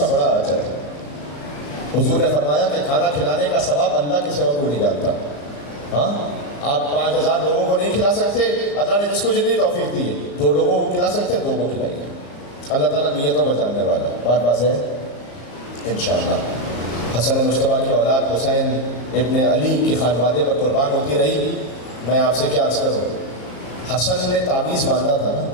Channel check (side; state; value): right; late; 35 ms